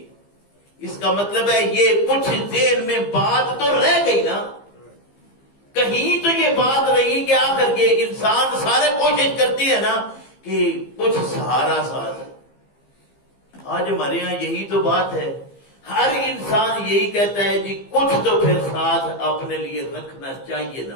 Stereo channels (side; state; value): right; late; 15 ms